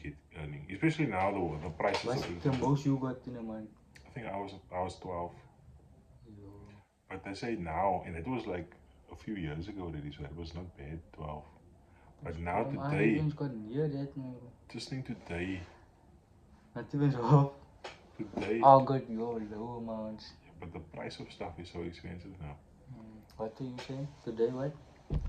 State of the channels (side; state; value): both; identical; correlation 1.00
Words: earning. Especially now the prices. What's the most you got in a month? I think I was 12. Yo. But they say now, and it was like a few years ago already, so it was not bad, 12. But now today, I got near that now. Just think today. Not even so. Today. I got your low amounts. Yeah, but the price of stuff is so expensive now. What are you saying? Today what?